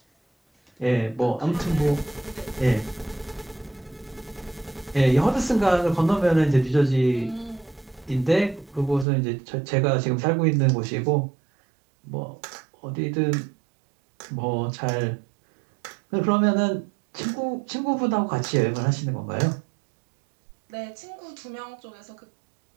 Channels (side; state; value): left; drops out; at 9.1 s